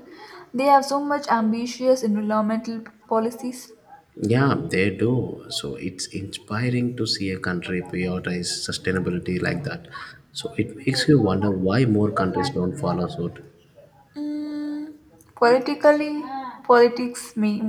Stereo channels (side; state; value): both; identical; correlation 1.00